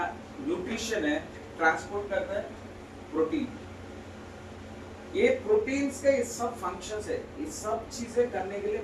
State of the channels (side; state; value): both; identical; correlation 1.00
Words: न्यूट्रिशन है, ट्रांसपोर्ट करता है प्रोटीन। ये प्रोटीन्स के ये सब फंक्शंस है, ये सब चीजें करने के लिए